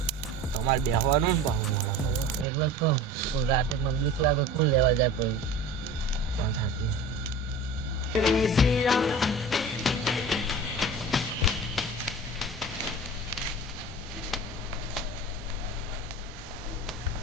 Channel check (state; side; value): normal; both; correlation 0.37